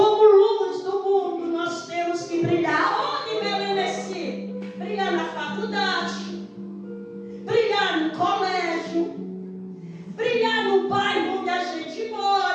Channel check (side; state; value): both; identical; correlation 1.00